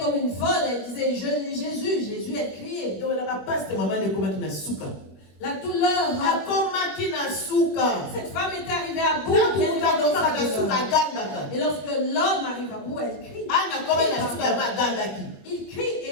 une folle. Elle disait, Jésus, Jésus, elle criait. La douleur. Cette femme était arrivée à bout. Et lorsque l'homme arrive à bout, elle crie. Il crie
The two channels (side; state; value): right; late; 20 ms